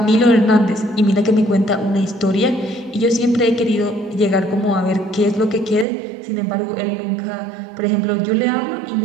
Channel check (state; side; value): drops out; left; at 5.9 s